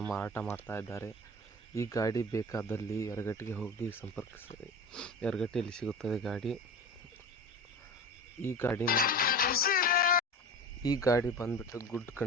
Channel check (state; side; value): normal; both; correlation 0.32